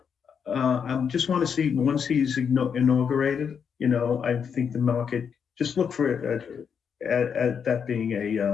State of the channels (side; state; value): right; quieter; 7.0 dB